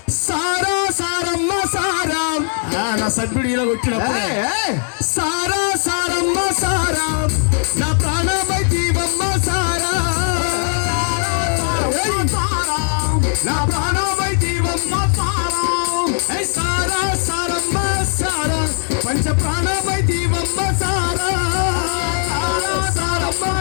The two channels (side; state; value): right; silent; 67 dB below the other